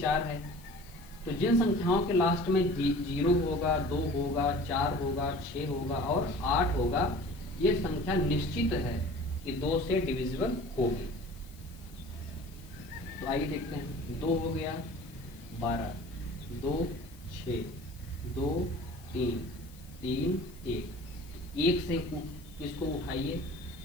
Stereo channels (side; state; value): left; noise; hiss, 24 dB below the sound